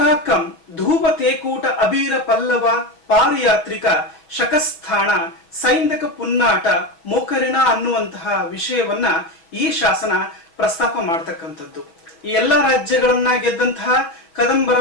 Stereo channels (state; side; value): late; right; 6.0 ms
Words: ಧೂಪ ತೇಕೂಟ ಅಬೀರ ಪಲ್ಲವ ಪಾರಿಯಾತ್ರಿಕ ಶಕಸ್ಥಾಣ ಸೈಂಧಕ ಪುನ್ನಾಟ ಮೋಕರಿಣ ಅನ್ನುವಂತಹ ವಿಷಯವನ್ನ ಈ ಶಾಸನ ಪ್ರಸ್ತಾಪ ಮಾಡ್ತಕ್ಕಂಥದ್ದು. ಈ ಎಲ್ಲಾ ರಾಜ್ಯಗಳನ್ನ ಗೆದ್ದಂತಹ ಕದಂಬರ